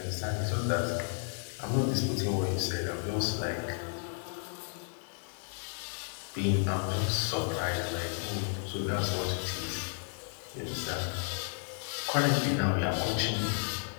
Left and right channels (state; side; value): silent; right; 56 dB below the other